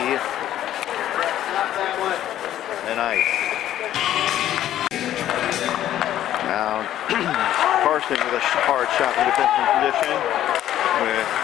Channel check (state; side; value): quieter; right; 12.2 dB